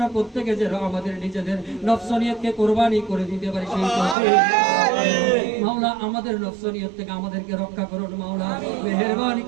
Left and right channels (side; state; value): left; drops out; at 4.2 s